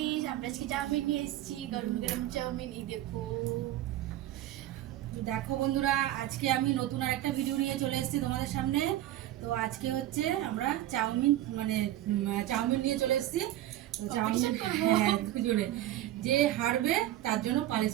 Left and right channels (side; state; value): left; quieter; 13.7 dB